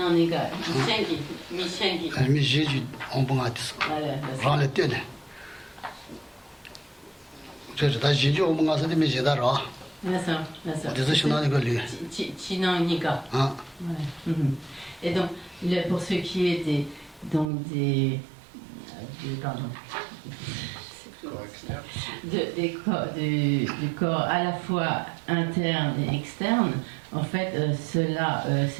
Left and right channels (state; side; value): drops out; left; at 17.5 s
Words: Michengi. Mi Jésus en bon atis. Rang le tene. C'est ta Jésus en bon atis mi Jésus ra. D'accord. C'est Chinaniga lui. Chinaniga. Ah. Et donc, pour ce qui est des du corps à la fois interne et externe, en fait, cela